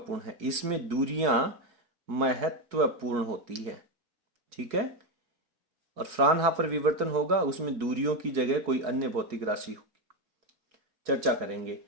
है, इसमें दूरियां महत्वपूर्ण होती है। ठीक है, और फ्राउनहोफर विवर्तन होगा उसमें दूरियों की जगह कोई अन्य भौतिक राशि होगी, चर्चा करेंगे।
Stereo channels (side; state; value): left; late; 4.7 ms